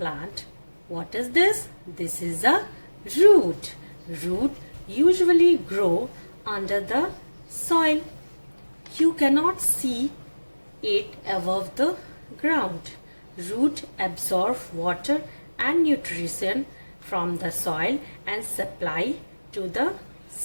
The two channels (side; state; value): both; inverted; correlation -1.00